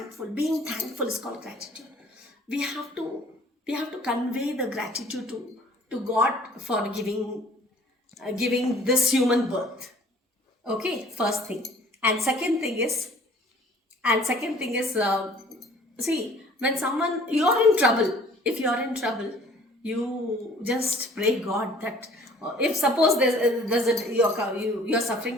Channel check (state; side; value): normal; both; correlation 0.53